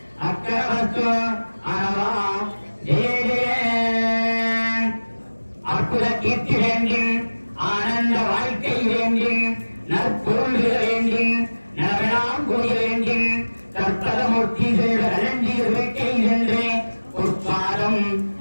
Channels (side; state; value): both; inverted; correlation -1.00